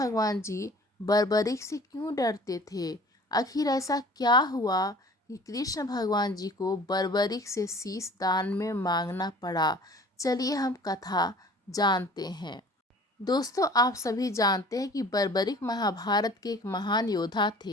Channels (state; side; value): normal; both; correlation 0.47